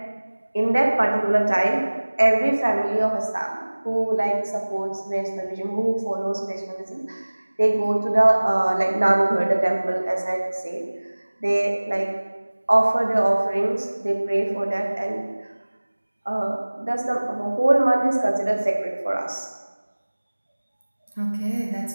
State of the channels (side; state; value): both; inverted; correlation -1.00